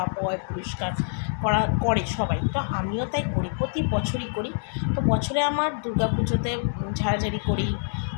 পোয় পরিষ্কার করে সবাই, তো আমিও তাই করি, প্রতি বছরই করি। তো বছরে আমার দুর্গা পুজোতে ঝাড়াঝাড়ি করি,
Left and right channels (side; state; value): right; silent; digital silence